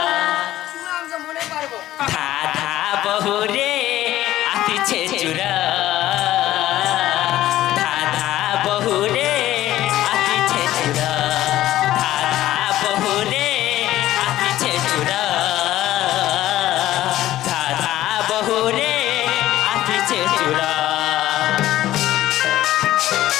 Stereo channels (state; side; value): quieter; right; 14.4 dB